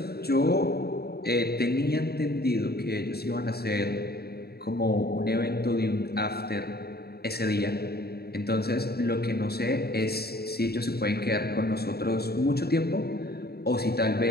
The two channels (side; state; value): right; late; 0.46 ms